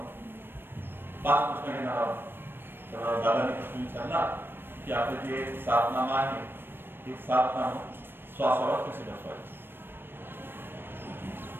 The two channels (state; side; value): late; left; 0.099 ms